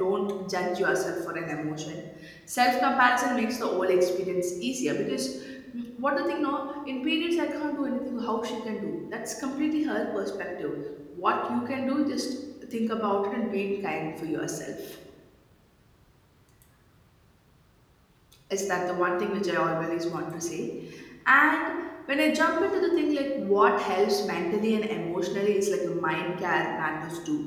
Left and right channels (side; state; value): both; identical; correlation 1.00